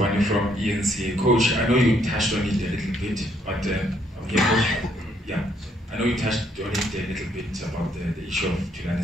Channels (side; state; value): both; normal; correlation 0.70